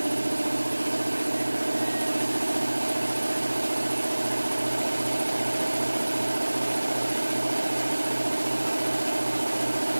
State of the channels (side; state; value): both; inverted; correlation -1.00